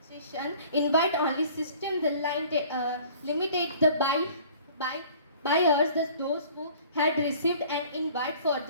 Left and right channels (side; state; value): both; inverted; correlation -0.51